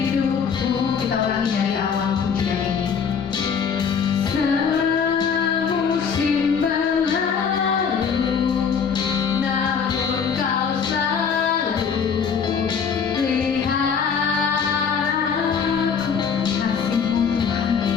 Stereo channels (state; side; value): quieter; right; 6.5 dB